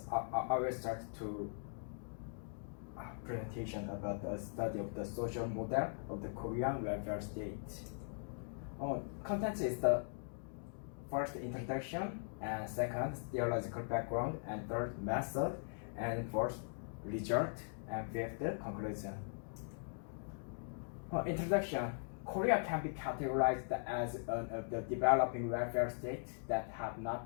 I will start to presentation about the study of the social model of the Korean welfare state. Content is the first introduction, and second theological background, and third method, and fourth result, and fifth conclusion. Introduction. Korea can be categorized as one of the developing welfare states that have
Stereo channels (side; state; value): right; silent; digital silence